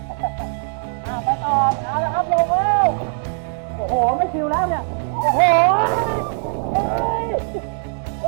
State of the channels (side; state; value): left; silent; digital silence